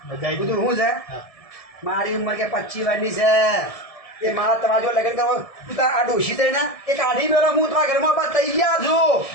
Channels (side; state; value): right; late; 1.7 ms